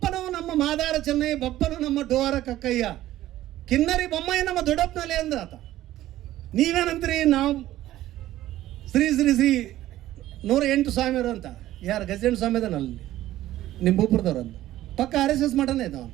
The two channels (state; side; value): quieter; left; 14.4 dB